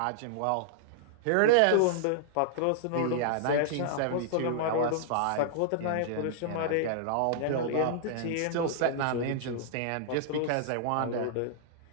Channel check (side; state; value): both; different; correlation -0.01